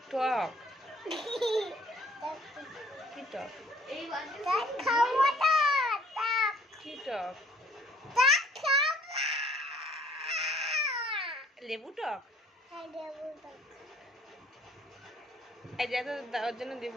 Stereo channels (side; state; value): both; normal; correlation 0.58